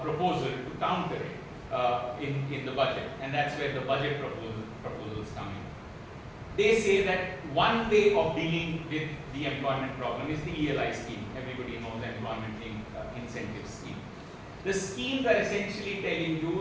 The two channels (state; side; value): identical; both; correlation 1.00